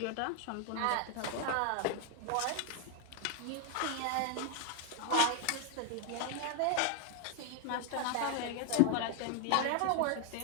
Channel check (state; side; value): different; both; correlation 0.00